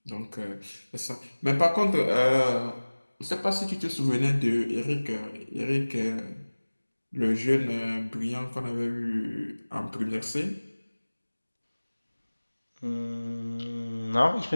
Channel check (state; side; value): inverted; both; correlation -1.00